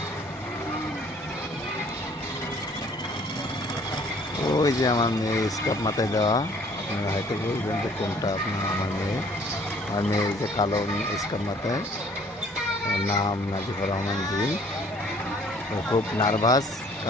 ওই যে আমার মেয়ে স্কার্ফ মাথায় দেওয়া, আপনারা হয়তো বলবেন যে কোনটা আপনার আমার মেয়ে। আমার মেয়ে এই যে কালো স্কার্ফ মাথায়, ওর নাম নাজিফা রহমান জি। ও খুব নার্ভাস,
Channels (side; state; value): both; normal; correlation 0.57